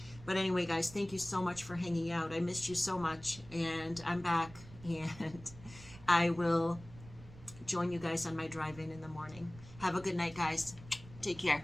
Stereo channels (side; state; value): right; noise; rumble, 18 dB below the sound